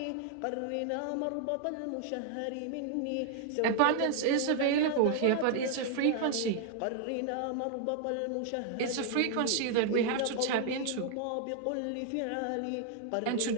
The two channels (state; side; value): different; both; correlation 0.00